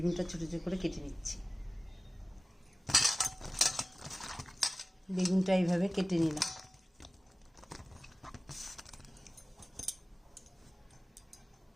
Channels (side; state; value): both; normal; correlation 0.97